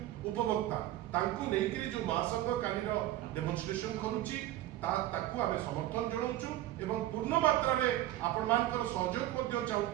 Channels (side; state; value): left; quieter; 14.6 dB